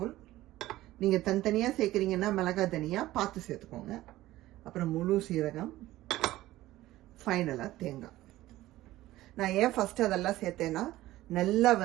நீங்க தனித்தனியா சேர்க்கறீங்கன்னா மிளகா தனியா பார்த்து சேர்த்துக்கோங்க. அப்புறம் முழு சீரகம், ஃபைனலா தேங்காய். நான் ஏன் ஃபர்ஸ்ட் அதெல்லாம் சேர்த்தேன்னா நல்லா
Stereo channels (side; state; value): left; quieter; 16.1 dB